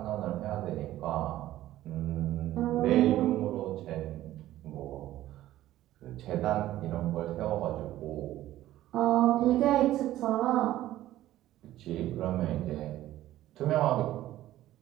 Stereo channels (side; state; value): left; quieter; 14.4 dB